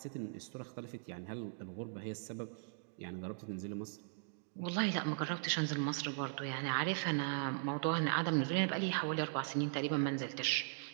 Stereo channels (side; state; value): left; silent; digital silence